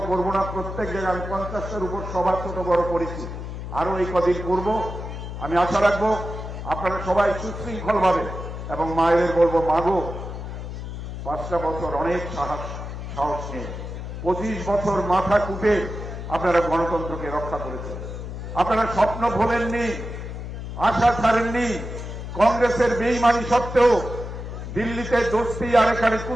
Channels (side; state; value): left; noise; hum, 8 dB below the sound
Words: করব না। প্রত্যেক জায়গায় আমি 50টার উপর সভা ছোট বড় করেছি, আরো এই কদিন করব। আমি আশা রাখবো আপনারা সবাই সুশৃঙ্খলভাবে, এবং মায়েদের বলবো, মাগো 5টা বছর অনেক সাহস নিয়ে 25 বছর মাথা কুটে আপনারা গণতন্ত্রকে রক্ষা করেছেন। আপনারা স্বপ্ন ভোলেননি, আশা ছাড়েননি। কংগ্রেসের বেইমানি সত্ত্বেও দিল্লিতে দোস্তি আর এখানে